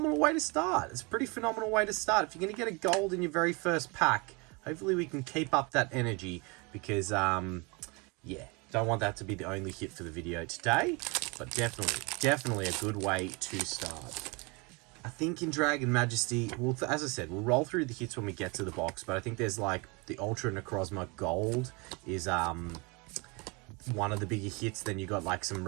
way to start. It's a pretty phenomenal way to start. If you're going to get a gold in your very first pack, hopefully we can keep up that energy, because, yeah, don't want that to be the only hit for the video today, but definitely a good way to start. I think in Dragon Majesty, well, as I said, we'll roll through the hits when we get to the box, but I think there's like the Ultra Necrozma Gold is one of the bigger hits. Then you got like some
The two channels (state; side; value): quieter; left; 28.9 dB